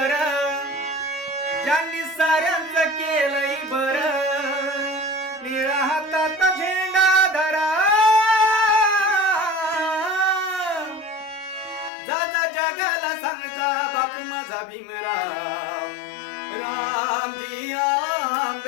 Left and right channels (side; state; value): right; drops out; at 11.9 s